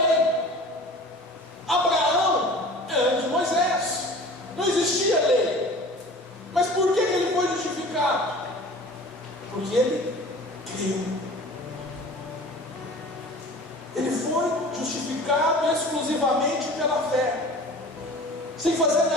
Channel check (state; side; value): normal; both; correlation 0.42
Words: Abraão é antes de Moisés, não existia lei. Mas por que ele foi justificado? Porque ele creu. Ele foi justificado exclusivamente pela fé, sem fazer